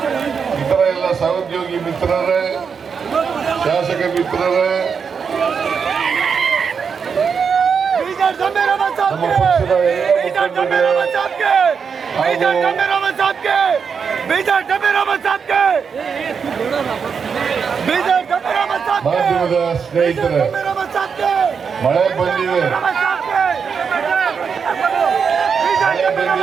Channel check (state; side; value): quieter; left; 6.2 dB